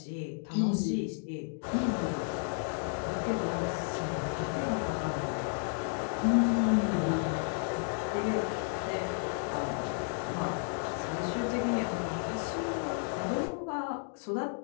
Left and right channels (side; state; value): right; silent; 56 dB below the other